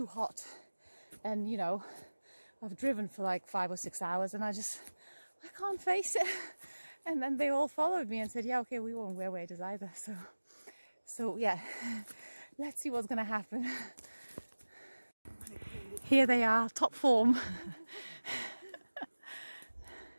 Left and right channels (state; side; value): inverted; both; correlation -1.00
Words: hot, and you know, I've driven for like 5 or 6 hours and I can't face it. And then they all followed me and said, yeah, okay, we won't wear waders either. So yeah, let's see what's gonna happen. Here they are, top form.